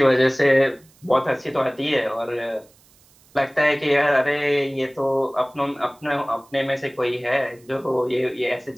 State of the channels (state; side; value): noise; right; hiss, 30 dB below the sound